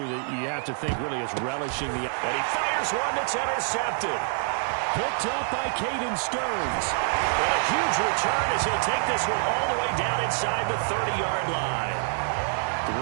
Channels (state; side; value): silent; left; digital silence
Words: that you have to think really is relishing the... And he fires one that's intercepted. Picked up by Caden Stearns. And a huge return as he'll take this one all the way down inside the 30-yard line. The